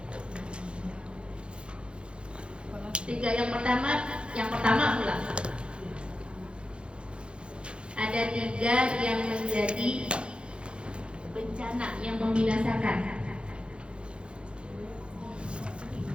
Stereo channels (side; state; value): left; late; 0.056 ms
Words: 3 yang pertama pula. Ada 3 yang menjadi bencana, yang membinasakan.